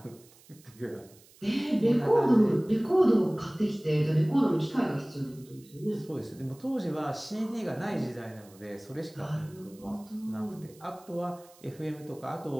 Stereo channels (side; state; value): right; noise; hiss, 26 dB below the sound